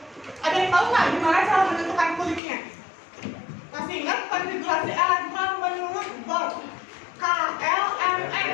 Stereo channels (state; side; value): drops out; right; at 2.4 s